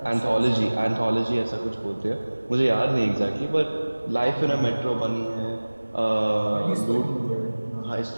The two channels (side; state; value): both; inverted; correlation -1.00